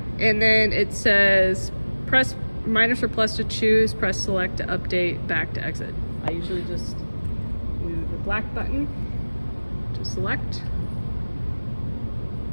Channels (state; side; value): inverted; both; correlation -1.00